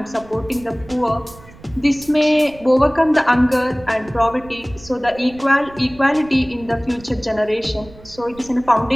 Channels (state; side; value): noise; right; rumble, 21 dB below the sound